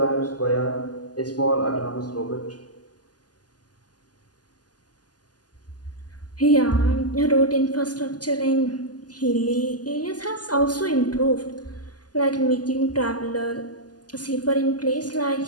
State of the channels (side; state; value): right; late; 0.69 ms